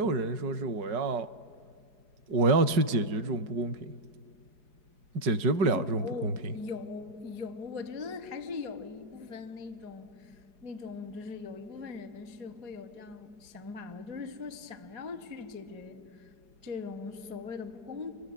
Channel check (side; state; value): left; late; 4.8 ms